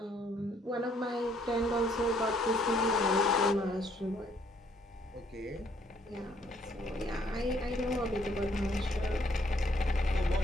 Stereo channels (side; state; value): both; normal; correlation 0.66